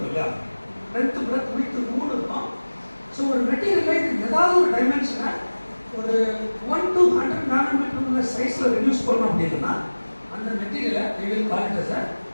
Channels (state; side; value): inverted; both; correlation -1.00